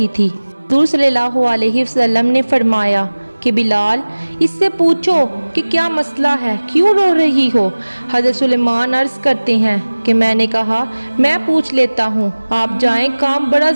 थी। हज़ूर सल्लल्लाहु अलैहि वसल्लम ने फरमाया कि बिलाल, इससे पूछो कि क्या मसला है, क्यों रो रही हो। हज़रत सुलेमान अर्ज़ करते हैं कि मैंने कहा मैं पूछ लेता हूँ, आप जाएं, काम बड़ा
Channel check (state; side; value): inverted; both; correlation -1.00